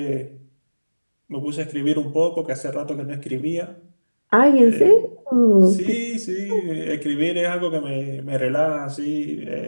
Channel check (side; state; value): both; inverted; correlation -1.00